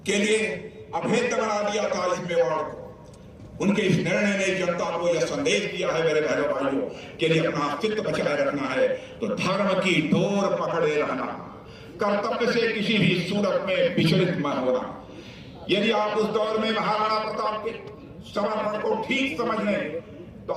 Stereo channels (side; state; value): both; identical; correlation 1.00